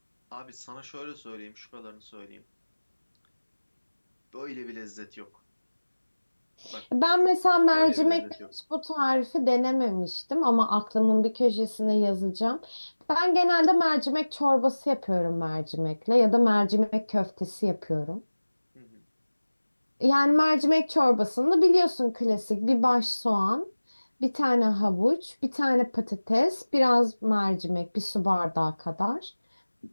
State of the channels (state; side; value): inverted; both; correlation -1.00